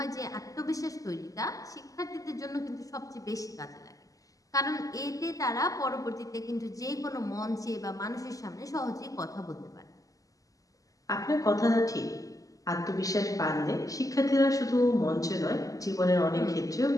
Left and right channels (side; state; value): right; late; 0.17 ms